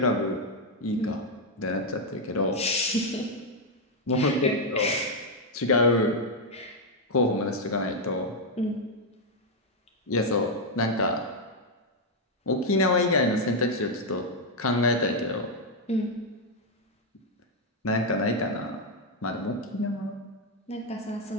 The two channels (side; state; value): both; normal; correlation 0.00